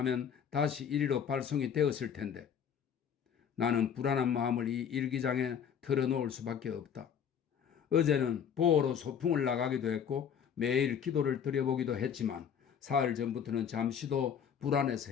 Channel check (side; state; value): right; quieter; 7.9 dB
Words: 다시 이리로 발송이 되었을 텐데 나는 불안한 마음을 이 일기장에 털어놓을 수밖에 없다. 어제는 보호로 소풍을 나가기도 했고 매일 기도를 드려보기도 했지만 사흘 전부터는 잠시도 불안해서